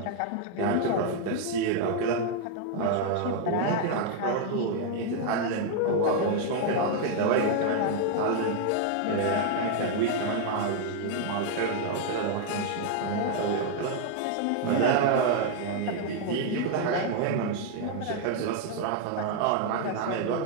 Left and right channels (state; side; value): different; both; correlation 0.00